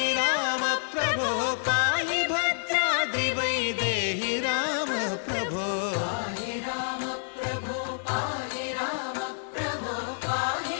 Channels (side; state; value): right; silent; digital silence